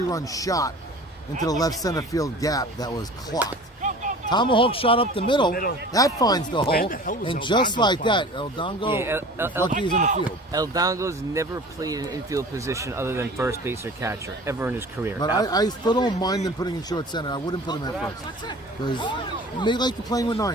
shot into the left center field gap that was clocked. Tomahawk shot up the middle. That finds the hole. the hell was And El just Dongo like find? that, El Dongo, Yeah, is lucky he's in the field. El Dongo's never played an infield position other than first base or catcher ever in his career. But I still don't mind them putting in short center. I wouldn't put him at first. Because they like to playing with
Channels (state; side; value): normal; both; correlation 0.42